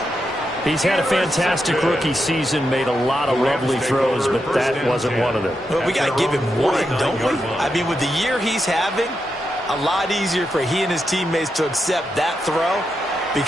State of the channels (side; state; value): both; normal; correlation 0.85